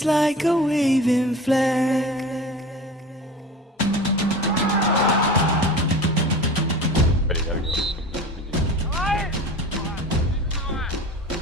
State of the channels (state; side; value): normal; both; correlation 0.36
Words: like a waving flag.